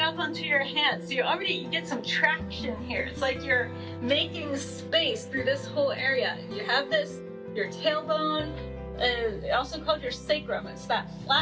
onto your hands. So you get some traction here. It's like you're making space through this whole area. You have this, your tailbone, also called your sacrum. It's that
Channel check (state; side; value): identical; both; correlation 1.00